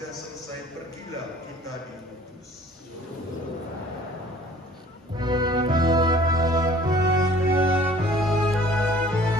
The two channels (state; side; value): normal; both; correlation 0.52